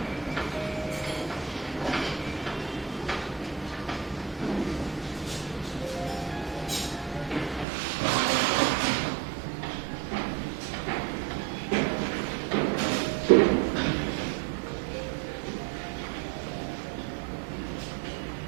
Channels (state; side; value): drops out; left; at 7.7 s